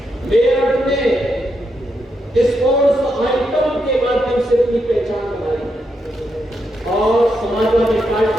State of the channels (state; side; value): normal; both; correlation 0.82